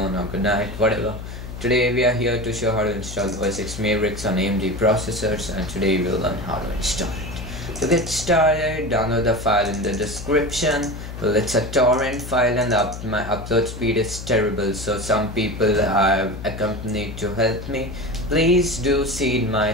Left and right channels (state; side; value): noise; left; hum, 10 dB below the sound